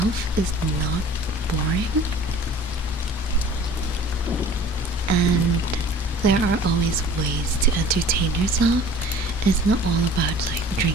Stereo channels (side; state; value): both; normal; correlation 0.47